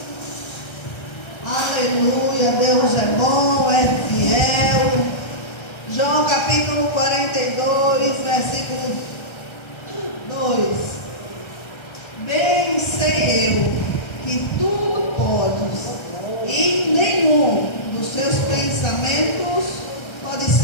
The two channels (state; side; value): late; right; 1.3 ms